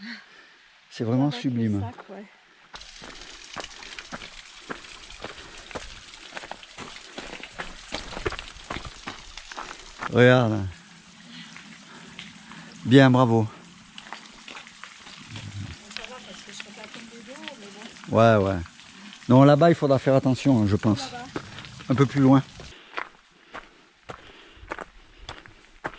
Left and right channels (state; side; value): identical; both; correlation 1.00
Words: C'est vraiment avec sublime. le sac, ouais. Regarde. Bien, bravo. Ouais. Non, là-bas, il faudra faire attention, je pense. Un peu plus loin.